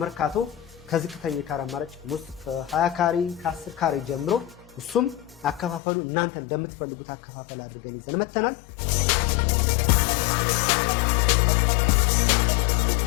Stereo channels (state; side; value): drops out; right; at 5.8 s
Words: ከዝቅተኛ ካሬ አማራጭ ውስጥ ከ20 ካሬ ከ10 ካሬ ጀምሮ እሱም አከፋፈሉ እናንተ እንደምትፈልጉት አከፋፈል አድርገን ይዘን መተናል።